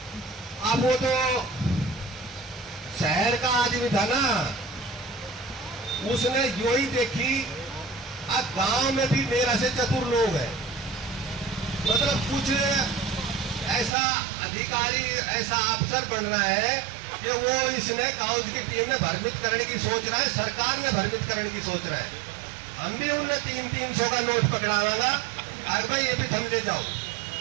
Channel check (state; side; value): drops out; left; at 14.0 s